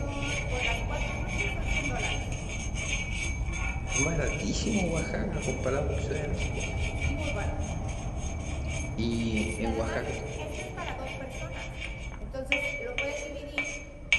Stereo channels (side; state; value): both; identical; correlation 1.00